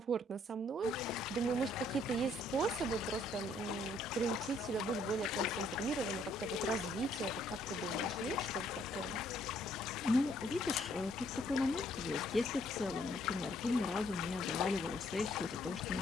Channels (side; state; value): both; normal; correlation 0.66